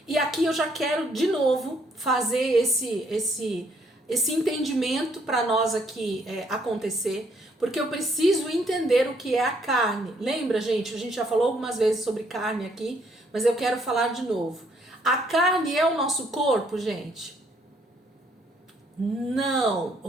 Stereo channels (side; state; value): both; normal; correlation 0.68